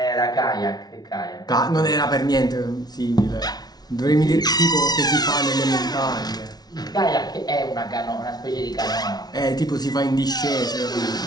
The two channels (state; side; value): late; right; 0.19 ms